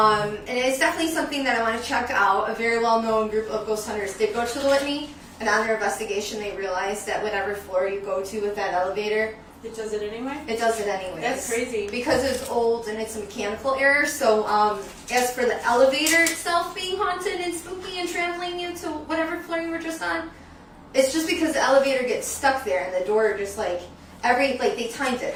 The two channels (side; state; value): both; identical; correlation 1.00